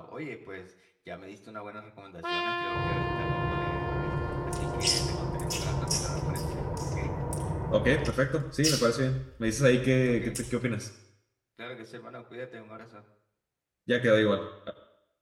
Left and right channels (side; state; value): both; identical; correlation 1.00